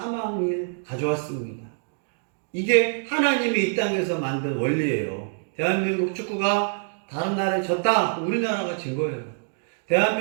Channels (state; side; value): silent; left; digital silence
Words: 가져왔습니다. 이게 하나님이 이 땅에서 만든 원리예요. 대한민국 축구가 다른 나라에 졌다, 우리나라가 진 거예요.